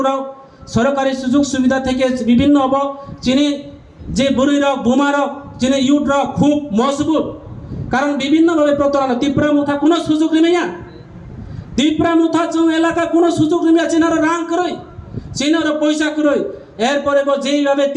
सरकारि सुजुग सुविधा থেকে বিভিন্ন अब चिनि যে বুড়িরক বুমারক যিনি ইউটরক খুব মজবুত কারণ বিভিন্নভাবে প্রতারণা ত্রিপুরা মুথা কোনো সুযোগ নিমিয়া ত্রিপুরা মুথা जों এলাকা কোনো সুযোগ নিমিয়া চিনার রাং করই চিনার পয়সা করই এরপরে যেইভাবে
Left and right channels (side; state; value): both; identical; correlation 1.00